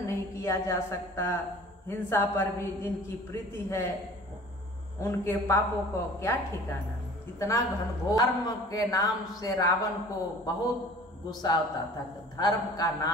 नहीं किया जा सकता। हिंसा पर भी जिनकी प्रीति है उनके पापों को क्या ठिकाना। इतना घनघोर धर्म के नाम से रावण को बहुत गुस्सा होता था। धर्म का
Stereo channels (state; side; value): normal; both; correlation 0.46